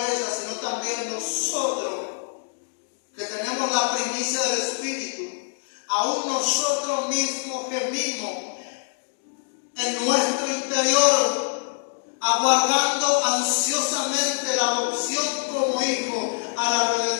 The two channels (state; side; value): silent; right; 62 dB below the other